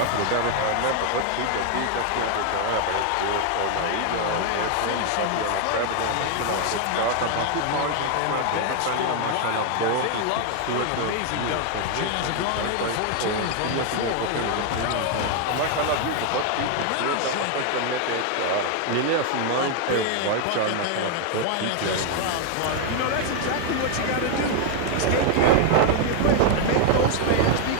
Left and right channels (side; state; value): both; different; correlation 0.01